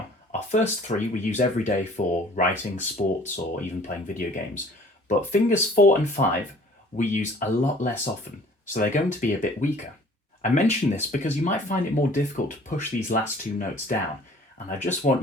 Our first 3 we use every day for writing, sports or even playing video games. But fingers 4 and 5 we use a lot less often, so they're going to be a bit weaker. I mention this because you might find it more difficult to push these last 2 notes down, and I just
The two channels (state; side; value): normal; both; correlation 0.52